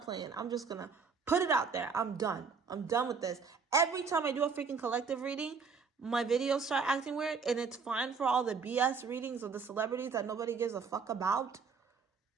playing. I'm just going to put it out there. I'm done. I'm done with this. Every time I do a freaking collective reading, my videos start acting weird, and it's fine for all the BS readings of the celebrities that nobody gives a fuck about.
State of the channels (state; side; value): quieter; left; 5.4 dB